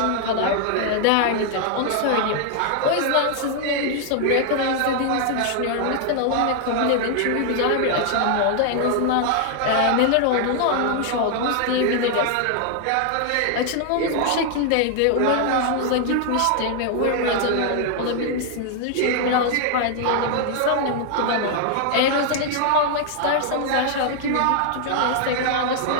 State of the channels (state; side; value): different; both; correlation 0.00